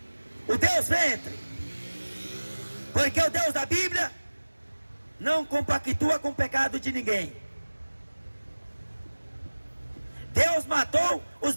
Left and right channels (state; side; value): inverted; both; correlation -1.00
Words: o Deus ventre. Porque o Deus da Bíblia não compactua com o pecado de ninguém. Deus matou os